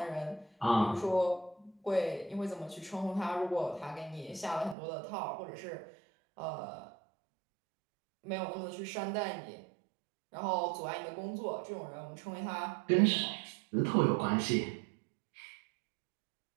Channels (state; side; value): drops out; left; at 4.8 s